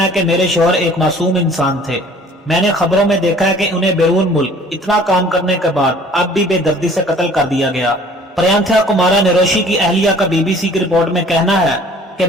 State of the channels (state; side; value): normal; both; correlation 0.52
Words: कि मेरे शौहर एक मासूम इंसान थे। मैंने खबरों में देखा है कि उन्हें बैरून मुल्क इतना काम करने के बाद अब भी बेदर्दी से कत्ल कर दिया गया। प्रयाथा कुमारा नरोशी की अहलिया का बीबीसी की रिपोर्ट में कहना है कि